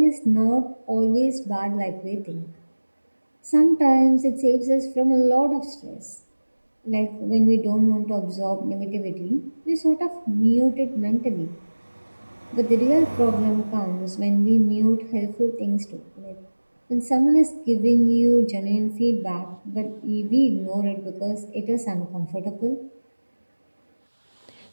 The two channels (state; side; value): inverted; both; correlation -1.00